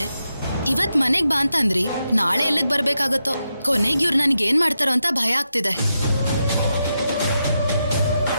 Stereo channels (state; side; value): inverted; both; correlation -0.86